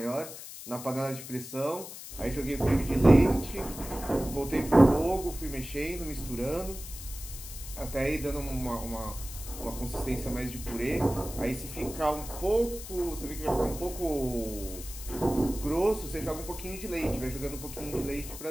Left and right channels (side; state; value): left; noise; hiss, 12 dB below the sound